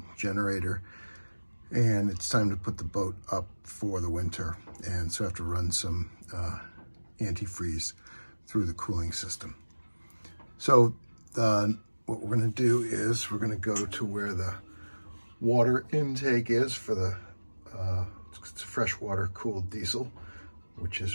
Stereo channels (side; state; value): both; inverted; correlation -1.00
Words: generator and it's time to put the boat up for the winter, and so I have to run some antifreeze through the cooling system. So what we're going to do is we're going to go to where the water intake is for the it's a freshwater cooled diesel, which